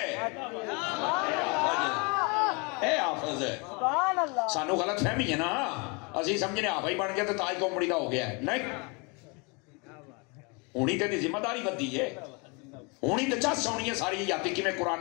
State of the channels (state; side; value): quieter; right; 30.9 dB